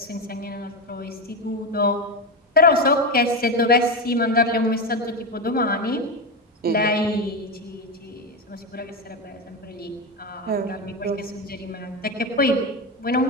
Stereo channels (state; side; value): normal; both; correlation 0.14